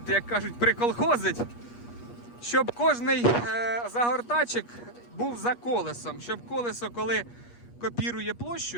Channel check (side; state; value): right; late; 8.4 ms